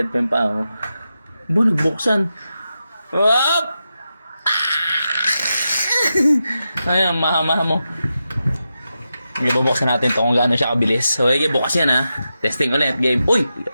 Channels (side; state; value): both; inverted; correlation -0.89